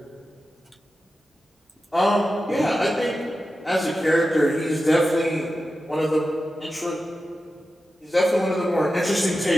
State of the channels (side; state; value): both; normal; correlation 0.92